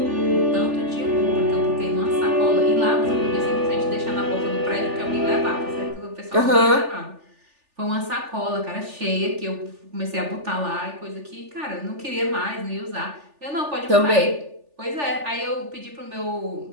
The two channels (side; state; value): left; late; 3.4 ms